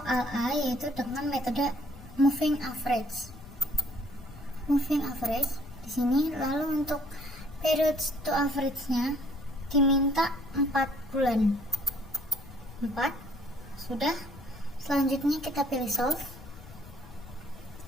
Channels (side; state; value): left; noise; rumble, 18 dB below the sound